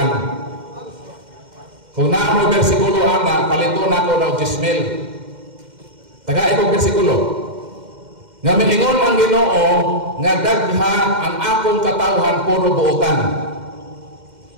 Kung naa mo bersikulo ana, palito nako na og 10,000. Taga itong bersikulo. Nga miingon ang Ginoo nga dagha ang akong katawhan puro buotan.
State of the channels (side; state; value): left; late; 2.1 ms